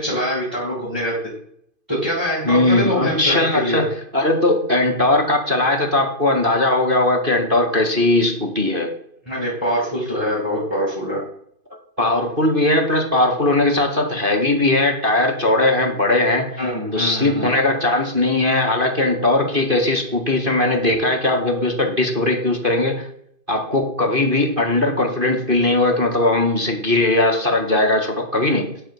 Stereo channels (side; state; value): left; late; 2.5 ms